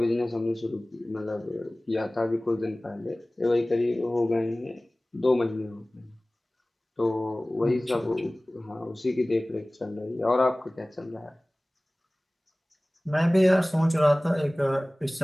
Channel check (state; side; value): normal; both; correlation 0.98